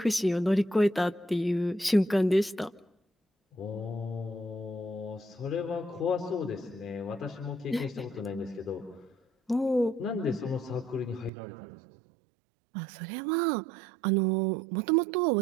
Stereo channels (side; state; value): left; drops out; at 11.3 s